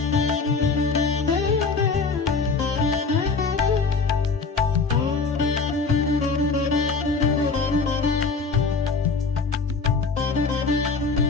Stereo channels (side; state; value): right; quieter; 4.5 dB